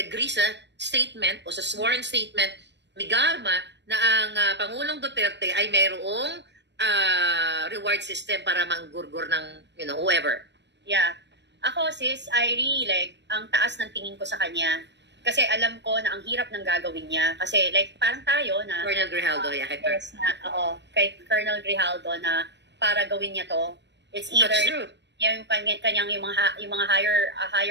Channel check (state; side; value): late; left; 0.51 ms